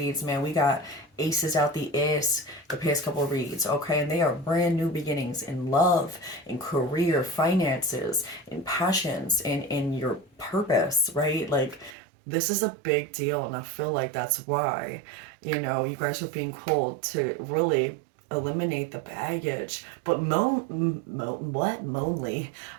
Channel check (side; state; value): left; drops out; at 12.0 s